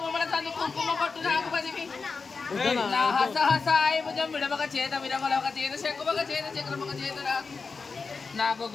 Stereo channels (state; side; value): quieter; right; 4.7 dB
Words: బొమ్మల సందు కుంకుమ పొట్టు నాకు పదివి నా హస హసాయి భుజం విడమక చేత విరమలొక చేత శంకుమక చేత చక్రమక చేత నాకు నాకు